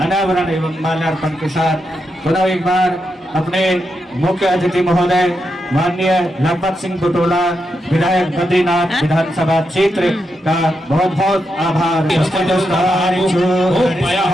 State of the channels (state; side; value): normal; both; correlation 0.85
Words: अनावरण एवं माल्यार्पण के साथ पुनः एक बार अपने मुख्य अतिथि महोदय माननीय लखपत सिंह बुटोला विधायक बद्रीनाथ विधानसभा क्षेत्र का बहुत बहुत आभार।